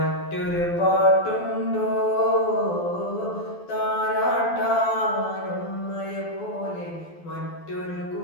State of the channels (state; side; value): late; right; 12 ms